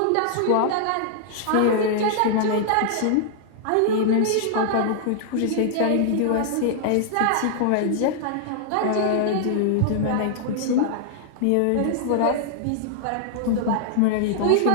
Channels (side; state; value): both; different; correlation -0.01